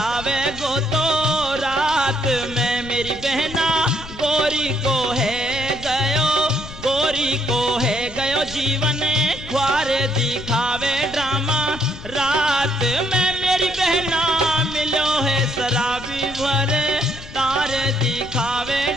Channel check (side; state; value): left; noise; rumble, 14 dB below the sound